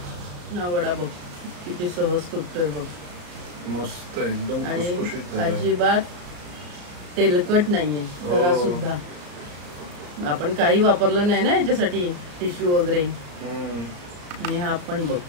हा वडा बघ किती सहज तुटतोय बघ. मस्त एकदम आणि खुसखुशीत झालाय. अजिबात तेलकट नाहीये जरा सुद्धा. आपण काही वापरलं नाही ना याच्यासाठी टिश्यू वगैरे. आणि हा पण बघ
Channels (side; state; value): left; late; 34 ms